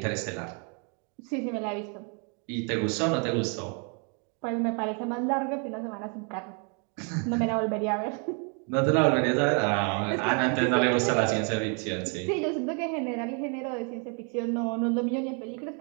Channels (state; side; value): quieter; left; 37.8 dB